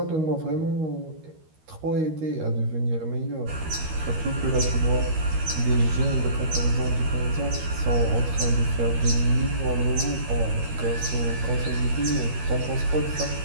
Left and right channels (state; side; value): late; left; 13 ms